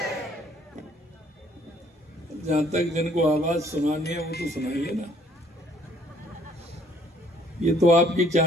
जहाँ तक जिनको आवाज सुनानी है वो तो सुनाइए ना, ये तो आपकी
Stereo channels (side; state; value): both; normal; correlation 0.61